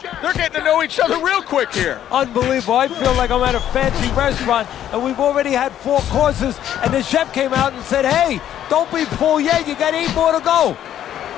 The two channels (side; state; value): right; quieter; 11.0 dB